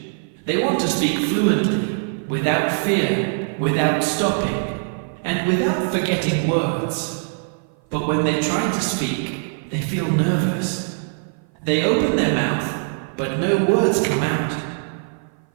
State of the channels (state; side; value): silent; left; 55 dB below the other